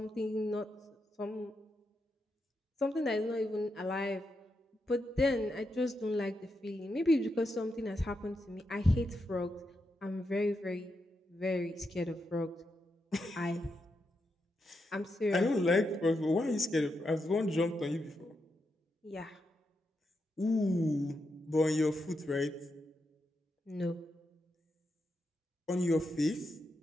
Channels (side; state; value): both; normal; correlation 0.84